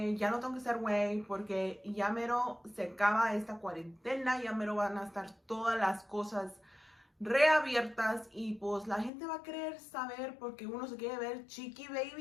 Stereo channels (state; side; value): drops out; right; at 9.1 s